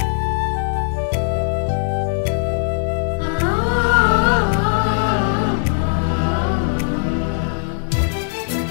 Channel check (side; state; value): right; silent; digital silence